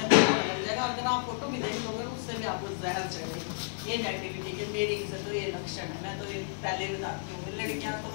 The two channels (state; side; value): silent; right; digital silence